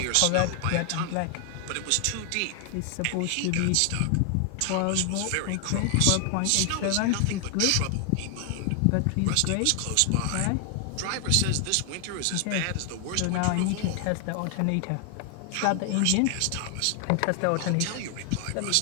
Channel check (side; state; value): both; different; correlation 0.00